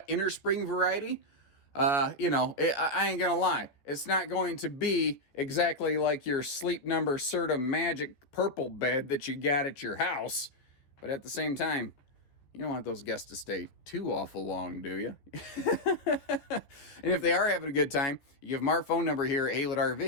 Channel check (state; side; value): late; right; 14 ms